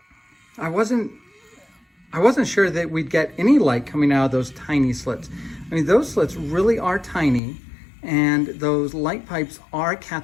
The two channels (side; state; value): right; drops out; at 7.4 s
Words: I wasn't sure that we'd get any light coming out of those tiny slits. I mean, those slits really are tiny, and those light pipes are